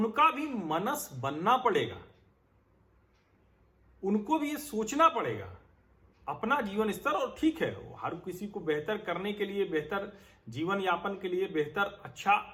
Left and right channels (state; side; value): identical; both; correlation 1.00